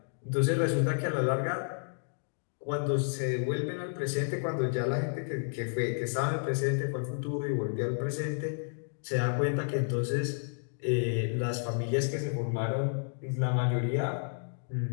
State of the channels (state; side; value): silent; right; digital silence